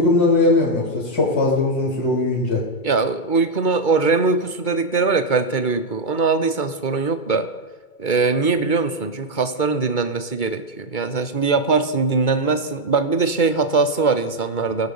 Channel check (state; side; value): late; right; 2.2 ms